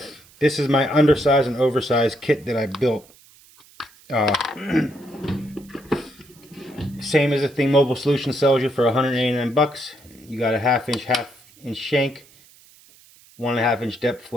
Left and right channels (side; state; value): right; noise; hiss, 26 dB below the sound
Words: this is my undersized and oversized kit that I built. Same as the thing Mobile Solutions sells you for 189 bucks. You got a half inch shank, 1.5 inch depth